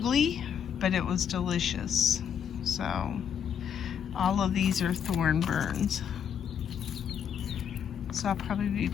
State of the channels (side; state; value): right; quieter; 8.1 dB